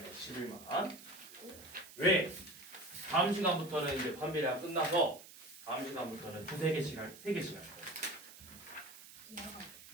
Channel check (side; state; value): right; noise; hiss, 17 dB below the sound